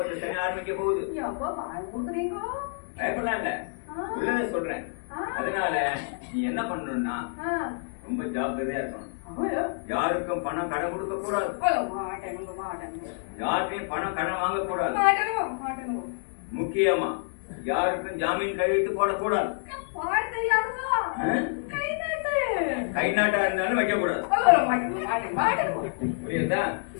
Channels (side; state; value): right; silent; 59 dB below the other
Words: சனி ஆரம்பிக்க போகுது. பயப்படலாம் இல்ல, உள்ளத சொல்றேன். அதனால நீ என்ன பண்ணணும்னா ரொம்ப ஜாக்கிரதையா இருக்கணும். யாருக்கும் பணம் கடன் கொடுக்க கூடாது. யாருக்கும் பணம் கடன் வாங்க கூடாது. முக்கியமா யாருக்கும் ஜாமீன் கையெழுத்து போடக்கூடாது. கை நாட்டா இருந்தாலும் வைக்க கூடாது. புரியுதா?